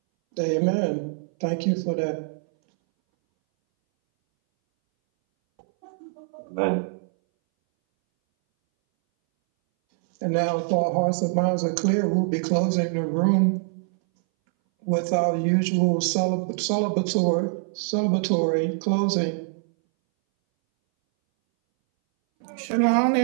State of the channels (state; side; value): silent; left; 61 dB below the other